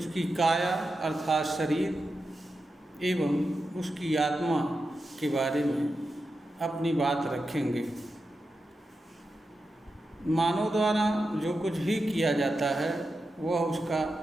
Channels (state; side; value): normal; both; correlation 0.89